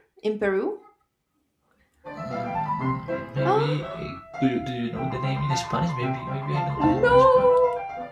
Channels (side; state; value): both; identical; correlation 1.00